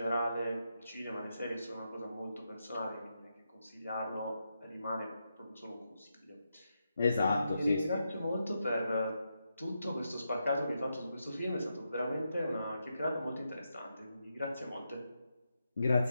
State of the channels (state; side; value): inverted; both; correlation -0.85